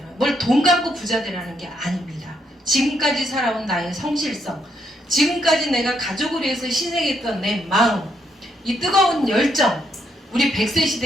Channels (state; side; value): normal; both; correlation 0.76